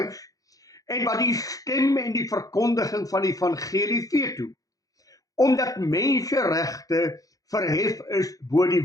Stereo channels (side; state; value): right; late; 0.17 ms